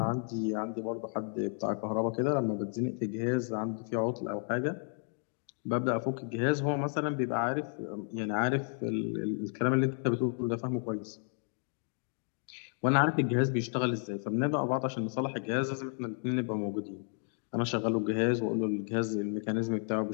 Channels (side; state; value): right; silent; 56 dB below the other